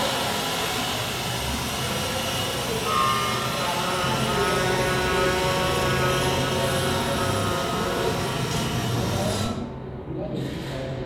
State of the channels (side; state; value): both; identical; correlation 1.00